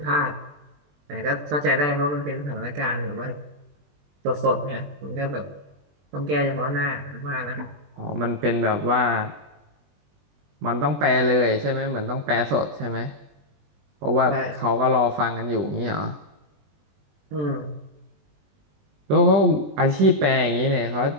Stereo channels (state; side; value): late; left; 21 ms